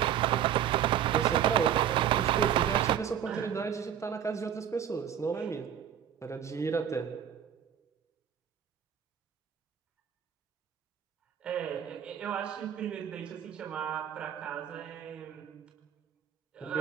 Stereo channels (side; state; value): left; quieter; 9.3 dB